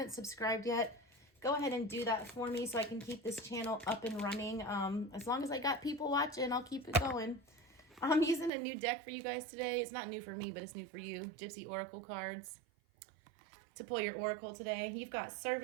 subscribed yet, go ahead and do that for me so I can keep this channel up and running. As long as I got people watching, I'll keep it going. I'm using a new deck for you guys today. It's not new for me, but it's new for you. Gypsy Oracle cards to pull your Oracle today. You've got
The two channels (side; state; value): left; drops out; at 8.5 s